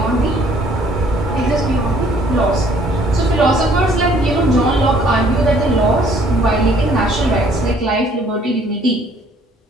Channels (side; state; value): both; normal; correlation 0.60